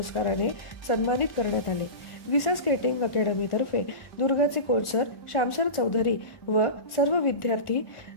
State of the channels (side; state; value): right; late; 1.4 ms